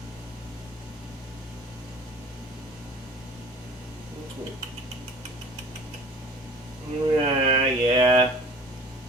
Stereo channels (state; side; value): normal; both; correlation 0.45